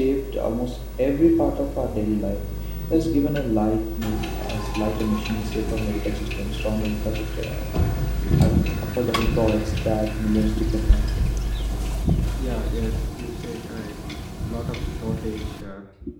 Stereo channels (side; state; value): both; identical; correlation 1.00